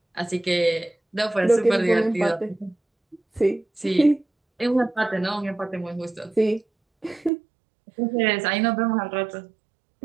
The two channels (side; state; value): left; drops out; at 7.3 s